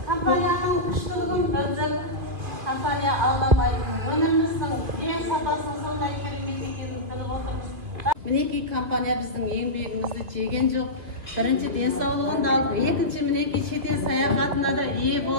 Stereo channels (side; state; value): left; late; 2.5 ms